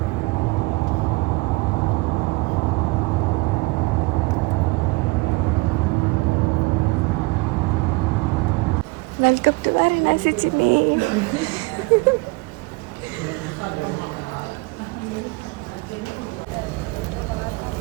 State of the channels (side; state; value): left; quieter; 25.1 dB